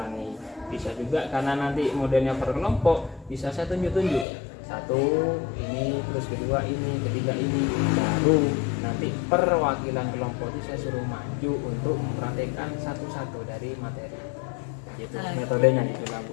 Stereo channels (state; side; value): drops out; right; at 4.2 s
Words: Bisa juga karena nanti modelnya per kelompok, bisa saya tunjuk-tunjuk. 1 ini, terus kedua ini, ketiga ini. Baru nanti perwakilan kelompok itu saya suruh maju untuk mempraktekkan satu-satu dari materi. gitu. Metodenya gitu lah Bu.